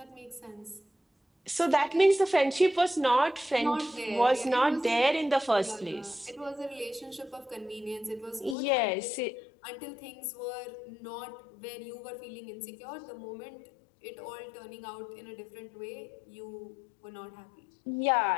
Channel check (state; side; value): drops out; right; at 8.6 s